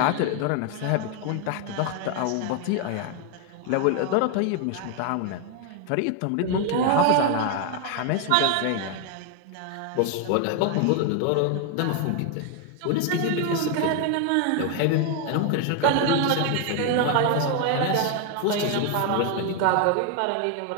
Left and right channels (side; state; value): both; different; correlation 0.01